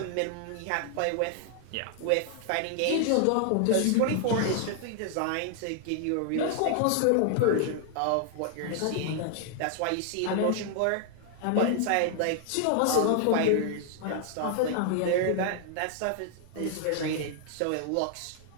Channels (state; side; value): different; both; correlation 0.00